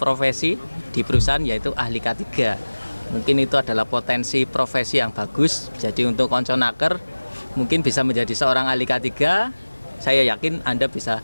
di perusahaan yaitu ahli K3. Mungkin itu adalah potensi profesi yang bagus. Jadi untuk Konconaker mungkin bisa menjadi seorang ahli K3. Saya yakin Anda bisa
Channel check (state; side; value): inverted; both; correlation -1.00